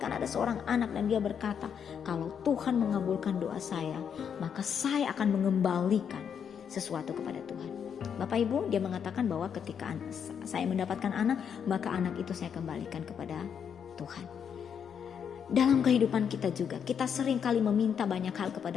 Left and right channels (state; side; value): quieter; right; 7.6 dB